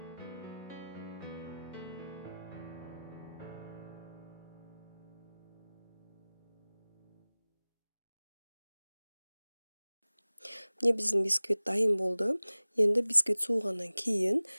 Міне биздин бисквит дайым болду. Енді бисквит суугандан кийин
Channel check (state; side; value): inverted; both; correlation -0.98